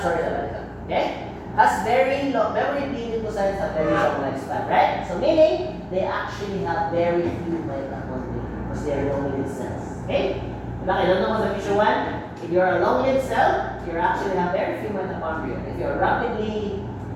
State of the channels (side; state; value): both; identical; correlation 1.00